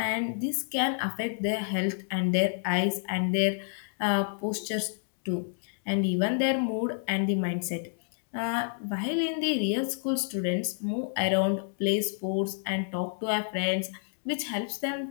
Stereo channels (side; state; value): right; silent; digital silence